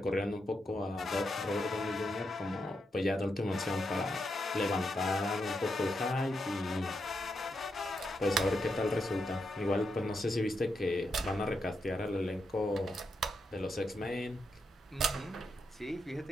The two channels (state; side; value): normal; both; correlation 0.83